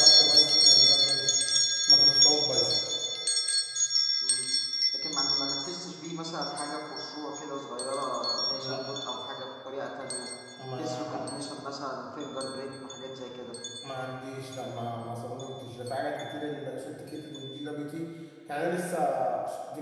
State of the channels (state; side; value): identical; both; correlation 1.00